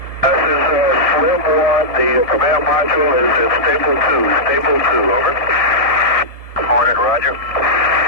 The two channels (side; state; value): right; late; 1.7 ms